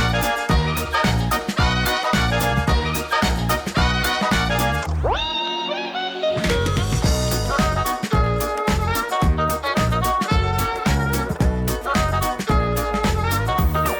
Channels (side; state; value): both; identical; correlation 1.00